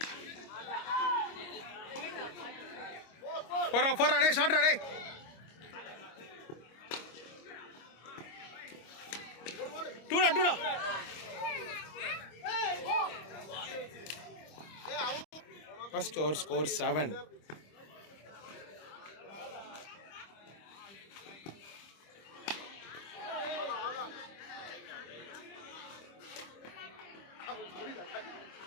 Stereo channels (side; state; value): right; late; 25 ms